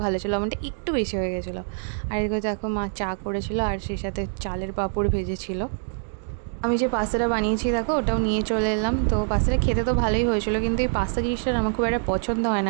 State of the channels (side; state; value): left; silent; 62 dB below the other